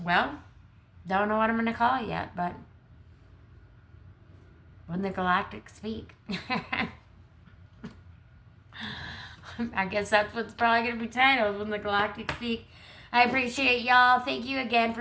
well, don't know what I'm going to call it yet, but When the Galactic Speak. I guess that's what's probably going to be titled, When the Galactic Speak. I appreciate y'all. Thank you again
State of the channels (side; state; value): both; identical; correlation 1.00